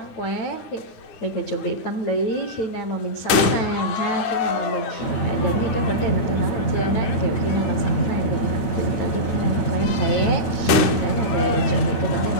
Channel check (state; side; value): late; right; 9.4 ms